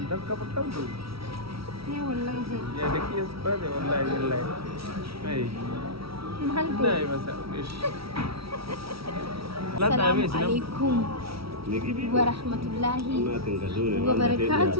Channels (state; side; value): late; left; 0.75 ms